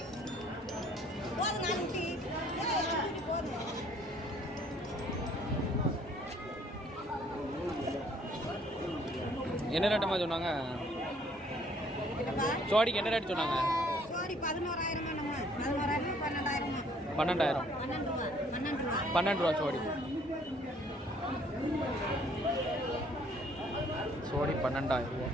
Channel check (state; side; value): normal; both; correlation 0.61